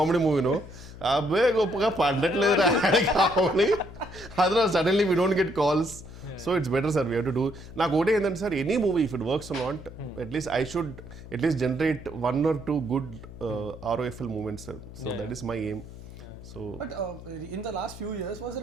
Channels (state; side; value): noise; left; hum, 15 dB below the sound